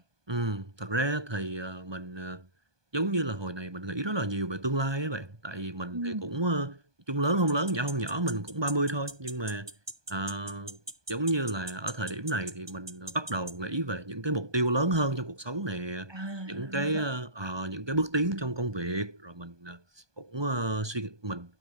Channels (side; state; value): left; late; 1.2 ms